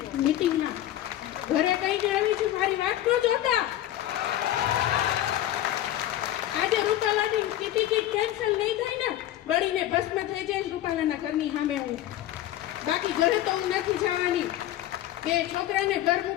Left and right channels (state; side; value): quieter; right; 13.3 dB